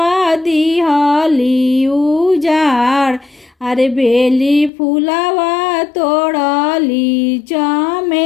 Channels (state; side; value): drops out; right; at 4.7 s